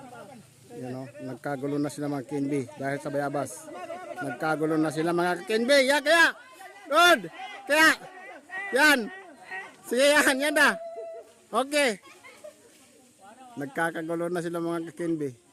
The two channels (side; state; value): both; identical; correlation 1.00